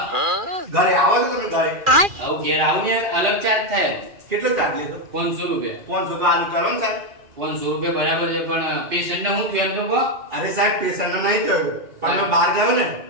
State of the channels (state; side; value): late; left; 2.4 ms